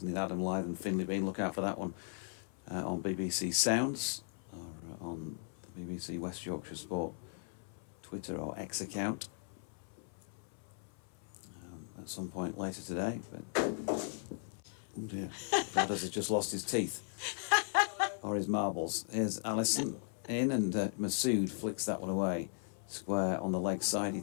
in Adam Lyth and Finley Bean. Look out for that one on BBC Sounds or on the BBC West Yorkshire Sport Twitter or X account at some point later today. But oh dear, Brad has just lost his teeth or his marbles. Here's Allison in, and Masood flicks that one away. Square on the leg side. He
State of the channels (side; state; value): right; silent; 53 dB below the other